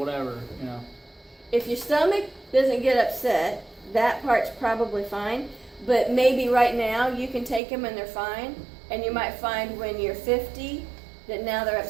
you know. If your stomach doesn't get upset, that part's probably fine. But maybe right now you can take them and they're fine. And you might find when you're 50 that now they're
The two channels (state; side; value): drops out; left; at 7.6 s